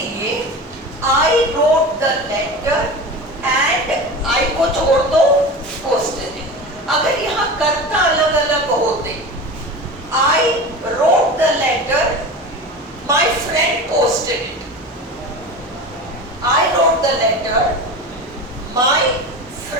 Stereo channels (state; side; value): normal; both; correlation 0.30